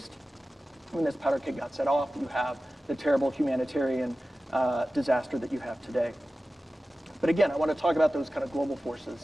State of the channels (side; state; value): both; normal; correlation 0.95